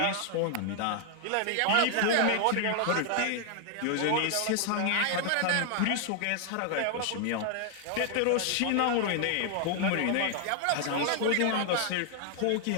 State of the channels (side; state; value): both; different; correlation 0.00